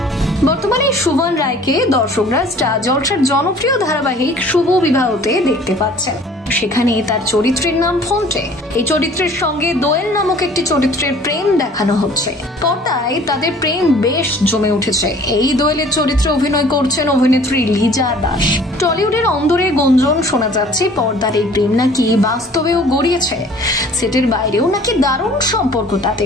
বর্তমানে সুবান রায়কে দর্শকরা স্টার জলসার জনপ্রিয় ধারাবাহিক শুভ বিবাহতে দেখতে পাচ্ছেন। সেখানে তার চরিত্রের নাম ফন্টে। এই চরিত্রের সঙ্গে দোয়েল নামক একটি চরিত্রের প্রেম দেখানো হচ্ছে। পর্দায় তাদের প্রেম বেশ জমে উঠেছে। এই দোয়েলের চরিত্রে অভিনয় করছেন অভিনেত্রী লিজা দাস। টলিউডের অন্দরে গুঞ্জন শোনা যাচ্ছে পর্দার এই প্রেম নাকি বাস্তবেও গড়িয়েছে। সেটের বাইরেও নাকি দারুণ সম্পর্ক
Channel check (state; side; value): normal; both; correlation 0.51